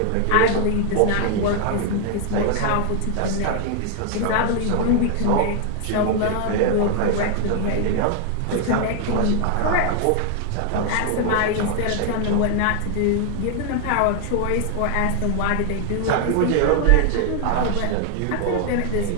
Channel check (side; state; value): both; different; correlation 0.00